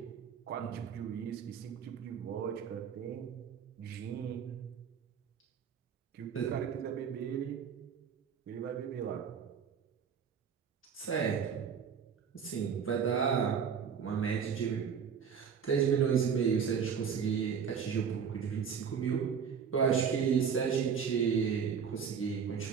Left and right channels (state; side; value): quieter; left; 7.0 dB